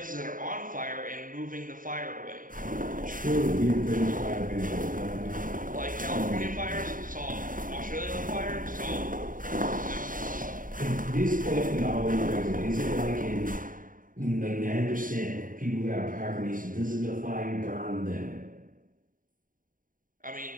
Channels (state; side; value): late; left; 0.39 ms